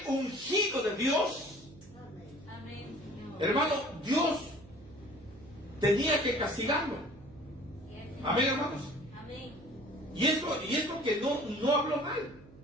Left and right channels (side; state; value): right; noise; hum, 21 dB below the sound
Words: ungido de Dios, Amén, Señor. hermano, Dios tenía que castigarlo. Sí, Señor. Amén, hermanos. Amén. Y esto que no habló mal,